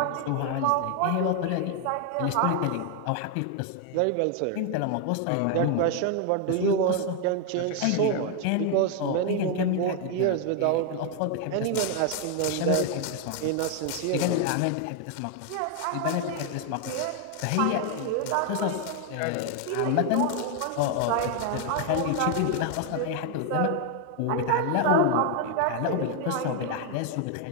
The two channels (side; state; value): both; different; correlation 0.01